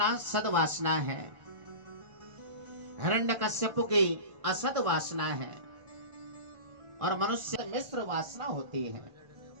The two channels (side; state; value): left; late; 1.5 ms